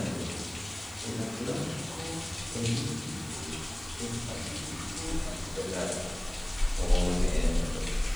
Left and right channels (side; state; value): left; noise; hiss, 21 dB below the sound